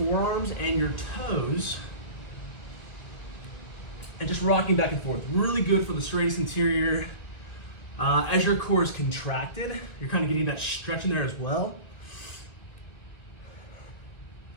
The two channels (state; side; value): late; right; 1.9 ms